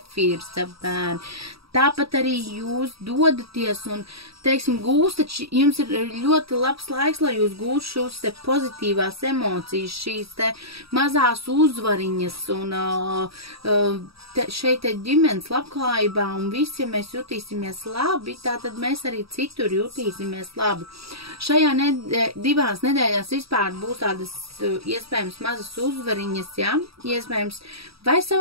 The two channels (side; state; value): left; late; 0.76 ms